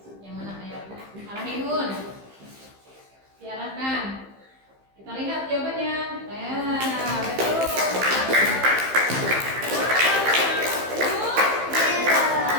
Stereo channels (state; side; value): late; left; 15 ms